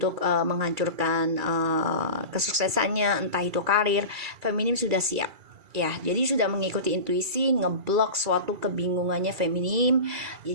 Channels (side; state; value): left; late; 2.3 ms